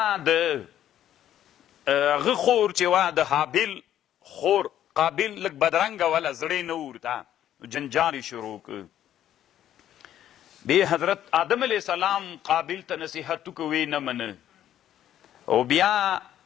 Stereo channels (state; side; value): quieter; right; 11.3 dB